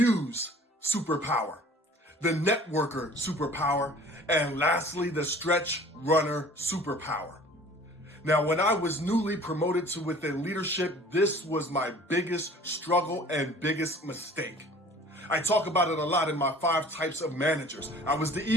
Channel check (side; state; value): both; normal; correlation 0.48